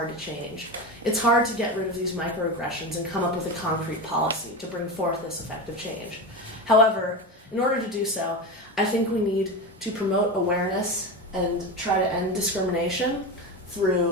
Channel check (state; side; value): normal; both; correlation 0.21